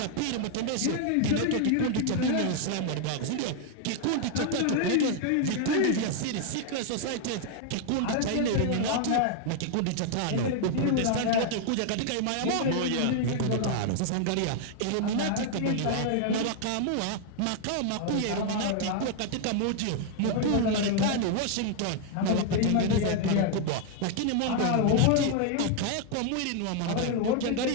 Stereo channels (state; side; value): different; both; correlation 0.00